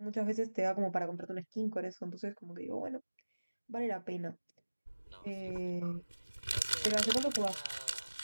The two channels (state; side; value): inverted; both; correlation -1.00